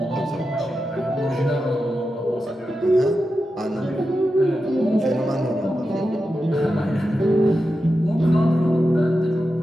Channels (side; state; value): both; normal; correlation 0.90